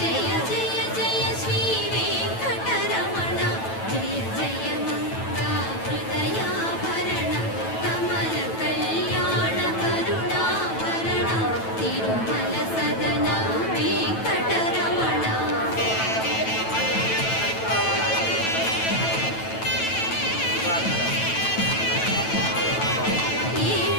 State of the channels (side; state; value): right; late; 9.1 ms